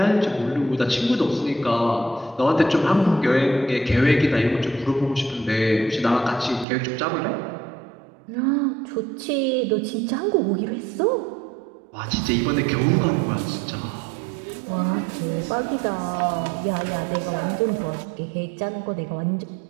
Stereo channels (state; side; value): drops out; left; at 6.7 s